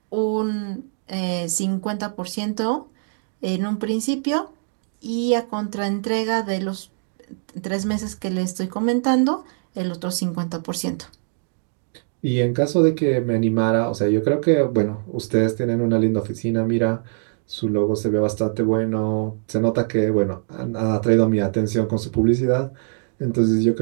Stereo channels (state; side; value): silent; left; digital silence